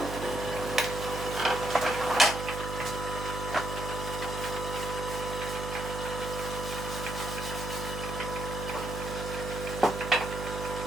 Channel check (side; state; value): right; noise; hum, 5 dB below the sound